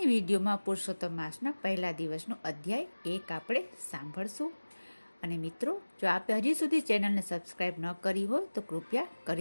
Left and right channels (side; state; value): both; inverted; correlation -1.00